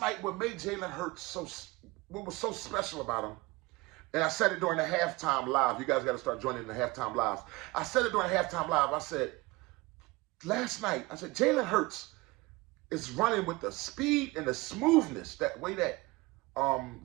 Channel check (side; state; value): left; quieter; 22.6 dB